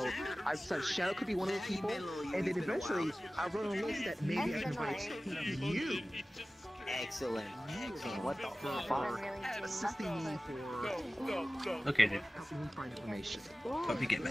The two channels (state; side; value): normal; both; correlation 0.97